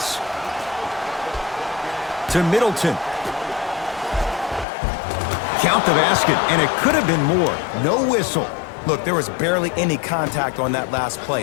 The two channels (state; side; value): drops out; right; at 4.7 s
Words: To Middleton. Count the basket, and it could have been more. No whistle. Look, there was barely any contact on that last